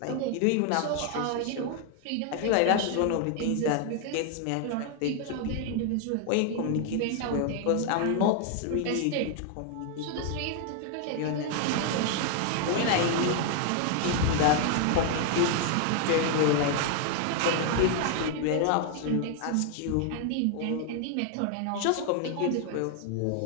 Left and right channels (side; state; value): both; different; correlation 0.00